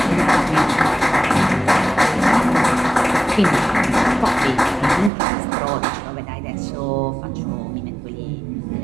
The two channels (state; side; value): drops out; left; at 5.1 s